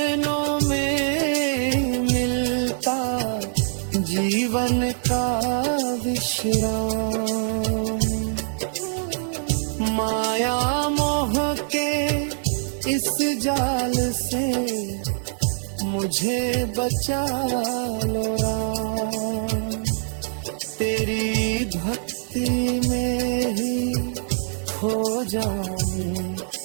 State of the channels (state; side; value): silent; left; 63 dB below the other